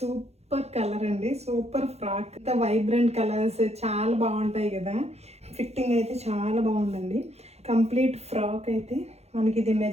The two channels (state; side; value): late; left; 0.31 ms